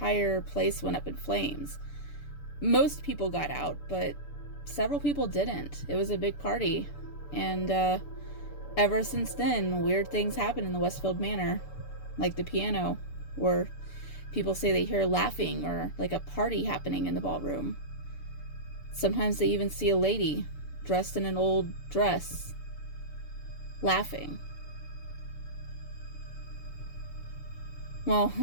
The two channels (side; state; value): right; late; 6.9 ms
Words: place went up in flames. Most people got out, but several people didn't. It was a big party. And ever since then, weird things happen in the Westfield Manor. Like the piano, where people say they hear laughing or like a party happening in the ballroom. Sometimes they even see a lady dressed in an old dress laughing." Well,